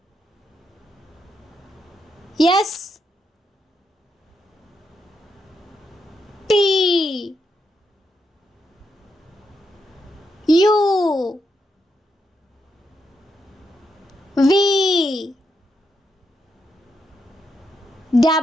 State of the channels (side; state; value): both; normal; correlation 0.81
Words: S, T, U, V,